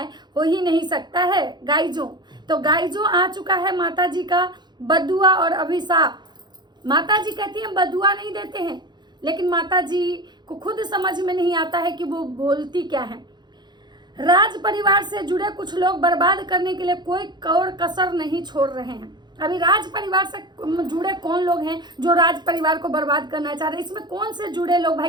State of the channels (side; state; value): left; late; 0.21 ms